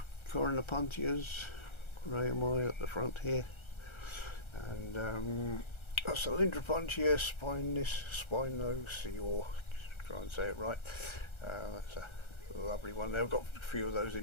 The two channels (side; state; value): right; late; 1.3 ms